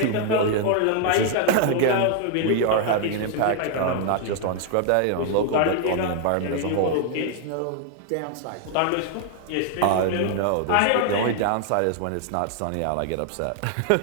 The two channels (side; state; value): both; different; correlation 0.00